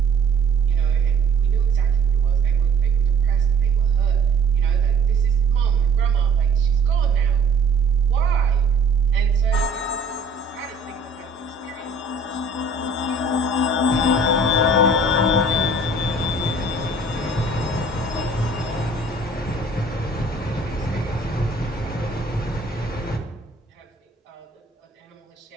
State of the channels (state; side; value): quieter; left; 3.1 dB